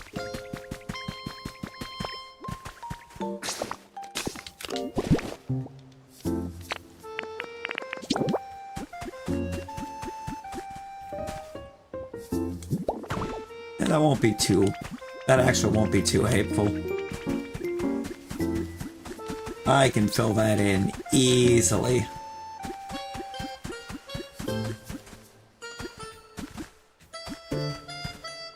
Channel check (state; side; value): identical; both; correlation 1.00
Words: And that actually won't be too hateful. I can fill that in easily.